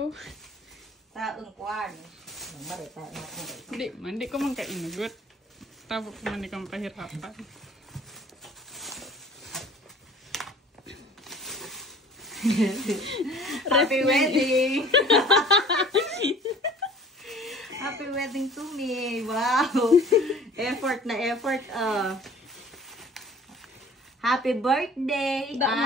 Taong kuwan. Hindi ko man kainugot. Tapos man ikang pahirapan. Happy wedding! Happy wedding to me. Wow. Effort na effort. Happy birthday.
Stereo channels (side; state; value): both; normal; correlation 0.48